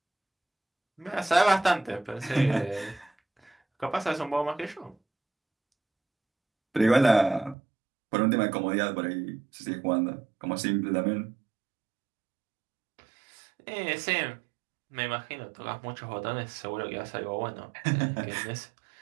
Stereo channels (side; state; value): left; drops out; at 7.6 s